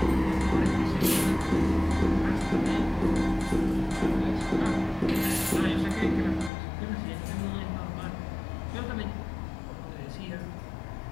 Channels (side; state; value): right; drops out; at 6.5 s